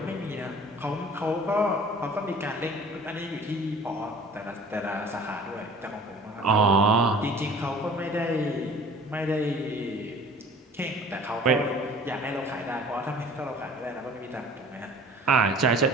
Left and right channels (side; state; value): both; normal; correlation 0.47